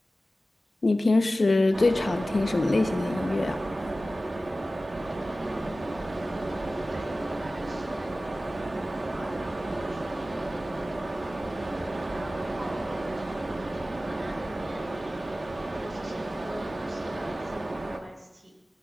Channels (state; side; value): normal; both; correlation 0.96